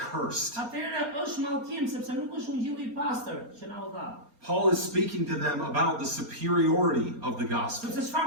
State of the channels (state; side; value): late; left; 4.3 ms